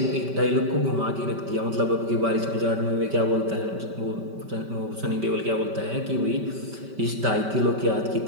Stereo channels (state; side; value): late; left; 5.1 ms